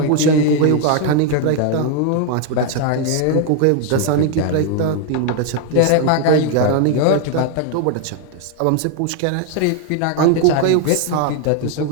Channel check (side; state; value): both; different; correlation 0.00